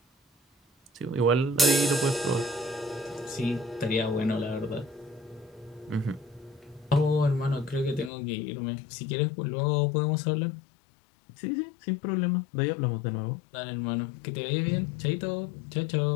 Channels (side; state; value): right; drops out; at 8.1 s